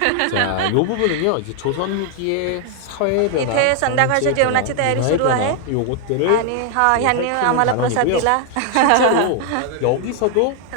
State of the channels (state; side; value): different; both; correlation 0.00